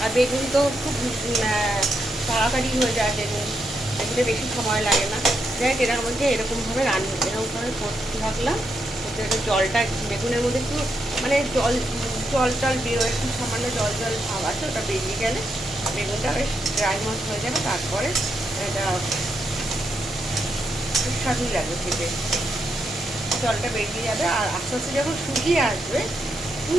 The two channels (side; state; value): both; normal; correlation 0.82